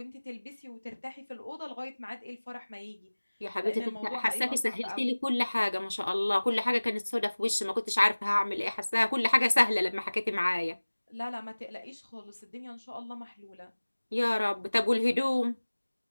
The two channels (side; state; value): both; inverted; correlation -1.00